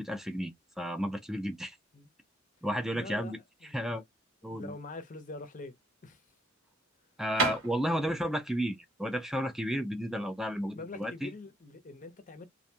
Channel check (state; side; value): normal; both; correlation 0.74